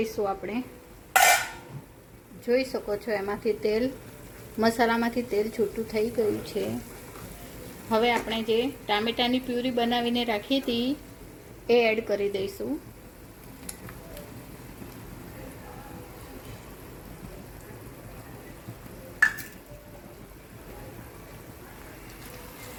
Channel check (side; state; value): both; identical; correlation 1.00